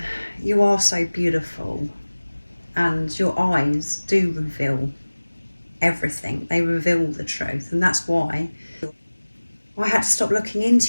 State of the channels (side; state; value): both; inverted; correlation -1.00